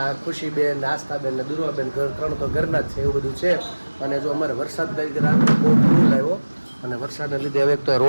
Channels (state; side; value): inverted; both; correlation -1.00